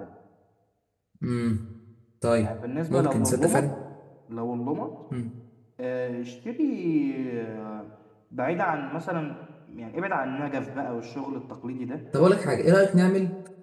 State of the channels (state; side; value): identical; both; correlation 1.00